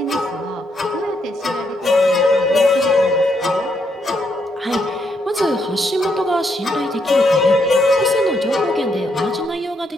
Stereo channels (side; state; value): both; normal; correlation 0.76